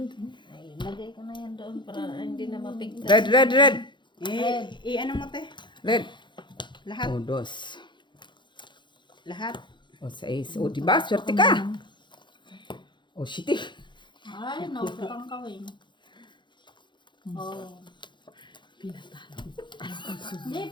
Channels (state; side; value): late; right; 0.23 ms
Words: Ay, lagay ko na yan doon para hindi na mapigtas. Red. Ano mo te? Red. Lahat. O, dos. Lahat. O, 6. O, diba? Swerte ka. O, shitty. Ay, nautotong ka, Weng. Oh. Hindi,